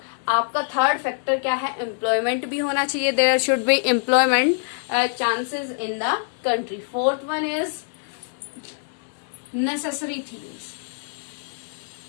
आपका third factor क्या है, employment भी होना चाहिए, there should be employment chances in the country. Fourth one is necessary things.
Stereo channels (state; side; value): silent; right; 62 dB below the other